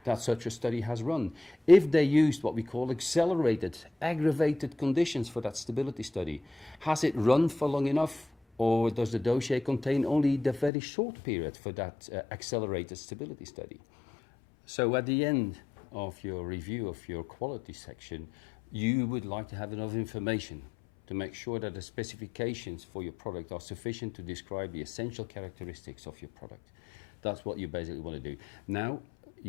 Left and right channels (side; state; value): right; drops out; at 10.7 s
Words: that such a study has run. If they used what we call accelerated, aggravated conditions for that stability study, has it run for long enough? Or does the dossier contain only the very short period for that accelerated stability study? So at the end of your review of your quality section, you would like to have enough information to make sure that the specifications for your product are sufficient to describe the essential characteristics of your product. That's what you basically want to do. Now,